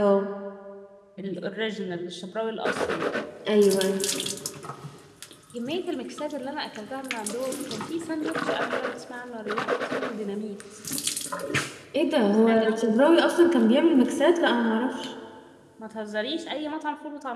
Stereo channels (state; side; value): identical; both; correlation 1.00